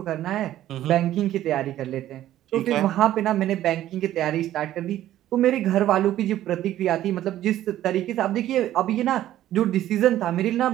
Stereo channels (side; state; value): left; quieter; 13.1 dB